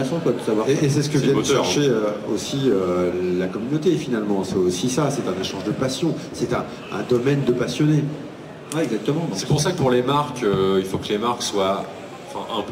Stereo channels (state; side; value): identical; both; correlation 1.00